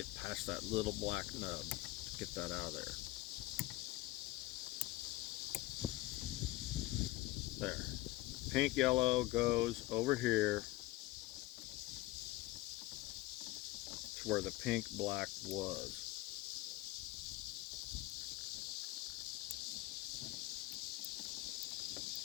past that little black nub. Get that out of there. There. Pink, yellow goes over here to where the pink, black was.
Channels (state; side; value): quieter; right; 18.2 dB